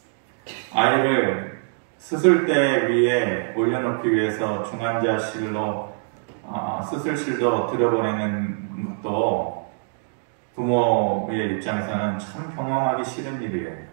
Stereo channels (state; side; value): silent; left; 63 dB below the other